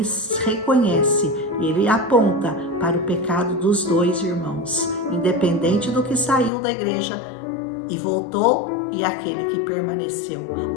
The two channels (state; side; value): drops out; right; at 6.5 s